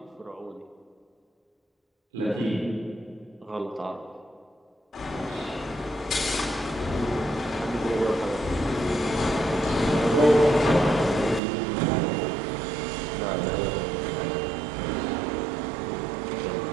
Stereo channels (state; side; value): drops out; left; at 11.4 s